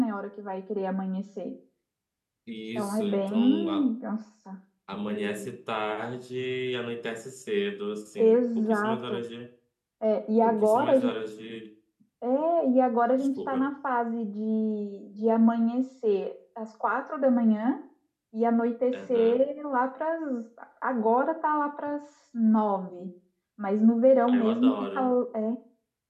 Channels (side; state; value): both; identical; correlation 1.00